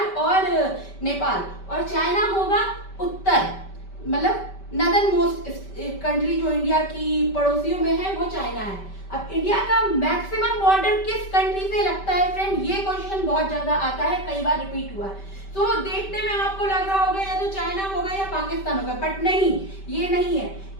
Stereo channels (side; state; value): right; late; 5.2 ms